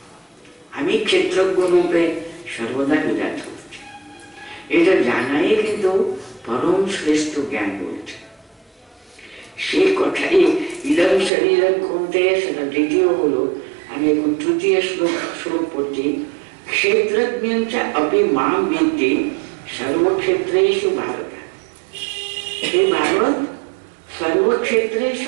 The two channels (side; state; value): left; drops out; at 11.3 s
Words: আমি ক্ষেত্রজ্ঞ রূপে সর্বদা বিরাজ করছি। এটা জানাই কিন্তু পরম শ্রেষ্ঠ জ্ঞান বলছে। সে কথাই ইদম শরীরম কৌন্তেয়, সেটা দ্বিতীয় হলো। আমি এখন তৃতীয় শ্লোক পড়ছি। ক্ষেত্রজ্ঞ অপি মাম বিদ্ধি সর্বক্ষেত্রেষু ভারত। হে ভারত,